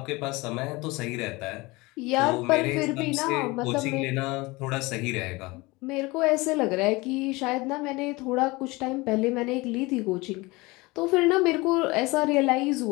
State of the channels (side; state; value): right; quieter; 23.2 dB